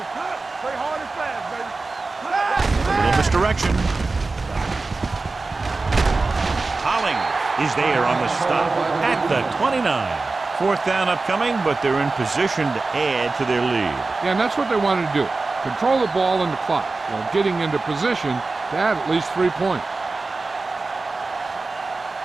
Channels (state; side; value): quieter; left; 3.7 dB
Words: Play hard and fast, baby. A little misdirection. Hollings is there on the stop at the 29. Fourth down upcoming, but they're in position to add to their lead. Yeah, and that's what they wanted to do. Control the ball and the clock while getting into position to add at least 3 points.